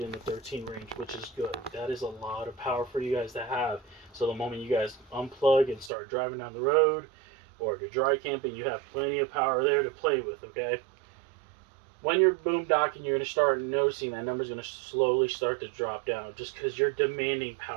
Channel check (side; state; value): left; drops out; at 5.9 s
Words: in the 13 range, which is good. That is a lot of power for you guys to have. So the moment you guys unplug and start driving down the road, or if you're dry camping, you have plenty of power there to play with, okay? When you're boondocking, you're going to start noticing that number's going to slowly start to drop down just because you're demanding